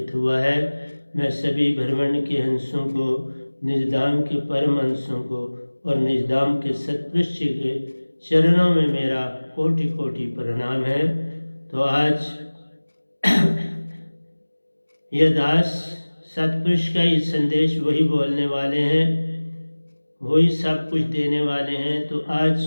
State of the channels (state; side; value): inverted; both; correlation -1.00